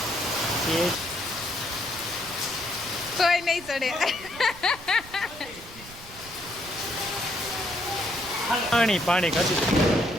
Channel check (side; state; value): right; noise; rumble, 19 dB below the sound